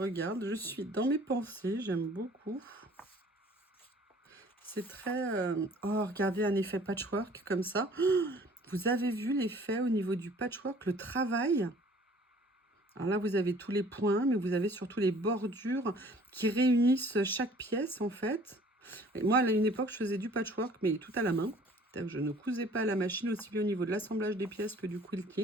je suis dans mes pensées, j'aime beaucoup. C'est très... Oh, regardez un effet patchwork comme ça. Vous avez vu l'effet au niveau du patchwork, le travail? Alors là, vous avez tous les points, mais vous avez surtout les bordures qui réunissent chaque pièce, en fait. Et moi, à une époque, je faisais du patchwork, mais tout à la main. Je ne cousais pas à la machine, aussi bien au niveau de l'assemblage des pièces que du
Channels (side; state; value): both; normal; correlation 0.53